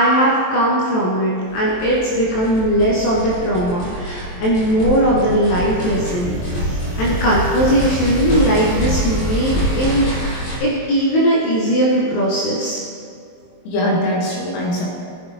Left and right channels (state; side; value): late; right; 23 ms